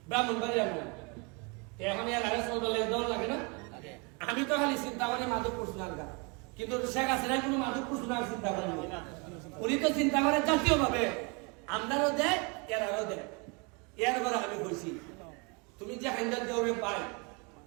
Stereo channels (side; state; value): left; quieter; 31.6 dB